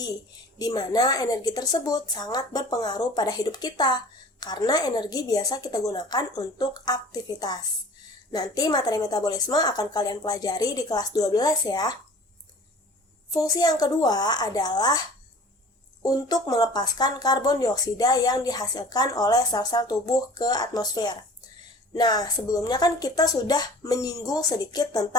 di mana energi tersebut sangat berpengaruh pada hidup kita, karena energi biasa kita gunakan untuk aktivitas. Nanti materi metabolisme akan kalian pelajari di kelas 12 ya. Fungsi yang kedua adalah untuk melepaskan karbon dioksida yang dihasilkan oleh sel-sel tubuh ke atmosfer. Nah, sebelumnya kan kita sudah menyinggung sedikit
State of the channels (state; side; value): normal; both; correlation 0.45